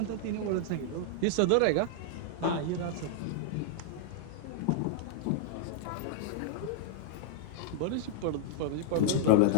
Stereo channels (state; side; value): different; both; correlation -0.01